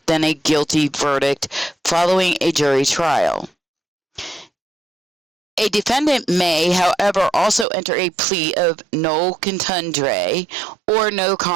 than a guilty verdict following a jury trial. A defendant may, however, also enter a plea of no contendere or no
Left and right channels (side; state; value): left; drops out; at 7.7 s